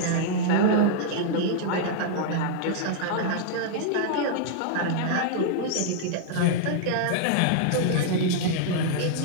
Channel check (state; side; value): different; both; correlation -0.01